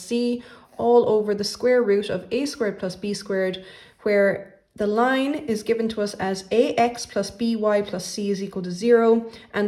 all over the square root of a squared plus b squared, where the line is given to us as ax plus by plus c is equal to 0,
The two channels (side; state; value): both; identical; correlation 1.00